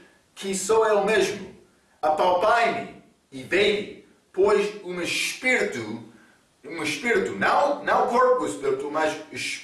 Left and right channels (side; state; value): both; identical; correlation 1.00